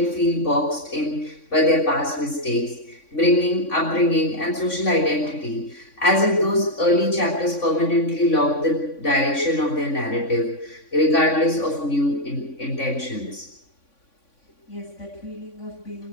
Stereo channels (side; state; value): right; late; 3.6 ms